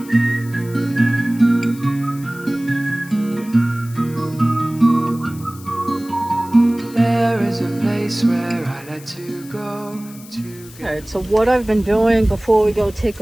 There is a place where I like to go to get. Alright, so what I've been doing before we go take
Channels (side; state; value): left; noise; hiss, 20 dB below the sound